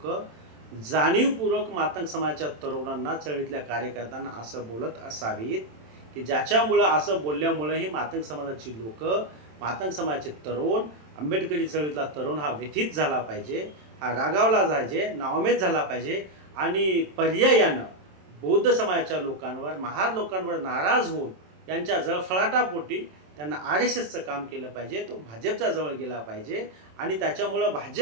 जाणीवपूर्वक मातंग समाजाच्या तरुणांना, चळवळीतल्या कार्यकर्त्यांना असं बोलत असावीत की ज्याच्यामुळं असं बोलल्यामुळं ही मातंग समाजाची लोक, मातंग समाजाचे तरुण, आंबेडकरी चळवळीतला तरुण हा व्यथित झाला पाहिजे, हा रागावला जायचे, नावमेद झाला पाहिजे आणि पर्यायानं बौद्ध समाजाच्या लोकांवर, महार लोकांवर नाराज होऊन त्यांच्या जळफळाटापोटी त्यांना RSSचं काम केलं पाहिजे, तो भाजपच्या जवळ गेला पाहिजे आणि त्याच्यामुळं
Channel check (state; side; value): late; left; 27 ms